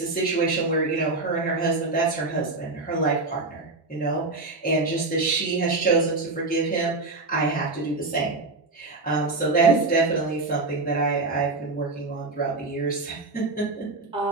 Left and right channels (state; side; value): quieter; left; 3.4 dB